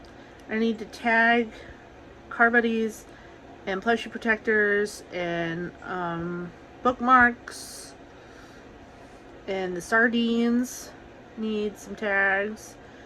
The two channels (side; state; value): both; identical; correlation 1.00